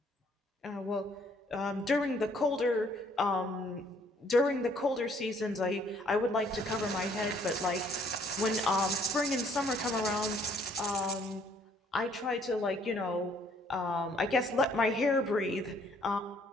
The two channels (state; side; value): normal; both; correlation 0.63